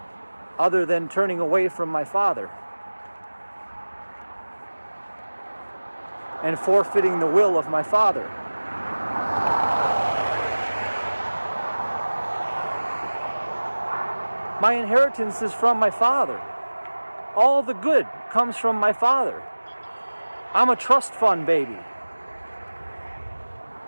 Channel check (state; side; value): inverted; both; correlation -1.00